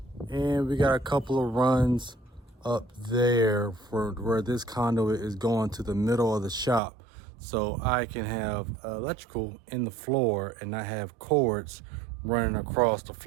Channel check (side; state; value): left; drops out; at 6.8 s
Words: and we got a couple of runs up there for where this conduit is going to the middle of the shop, so I can have electrical in the floor and not have cords running across the